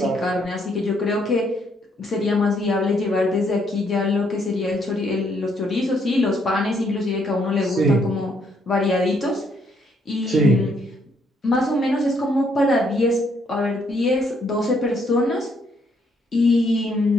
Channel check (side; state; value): both; normal; correlation 0.71